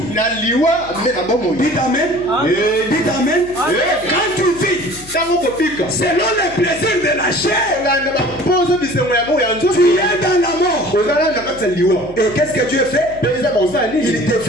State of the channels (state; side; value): noise; left; hum, 20 dB below the sound